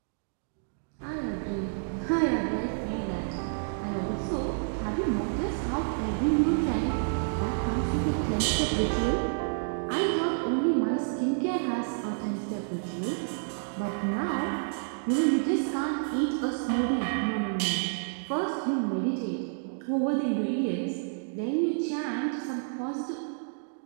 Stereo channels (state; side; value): silent; left; digital silence